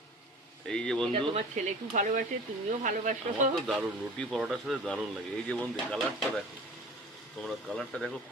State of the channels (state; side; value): normal; both; correlation 0.41